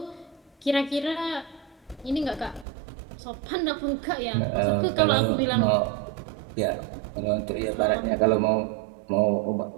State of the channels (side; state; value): left; drops out; at 2.7 s